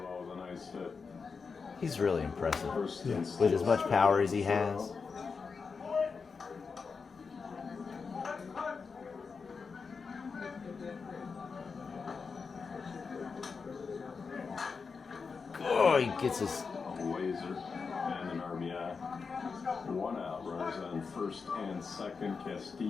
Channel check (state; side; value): quieter; right; 5.1 dB